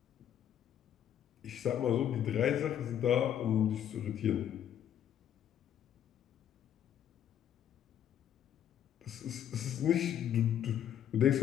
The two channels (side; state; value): right; quieter; 10.0 dB